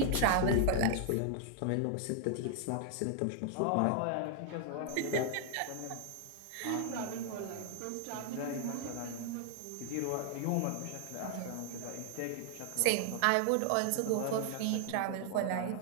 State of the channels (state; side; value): different; both; correlation 0.00